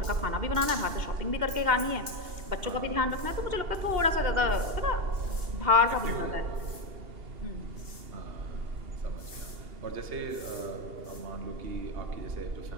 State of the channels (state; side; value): late; left; 2.8 ms